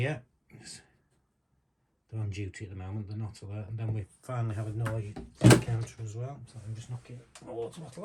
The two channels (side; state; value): both; identical; correlation 1.00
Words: They're on duty at the moment, they're not alert. And then we finally have a noise counter as well. So I'm just knocking my water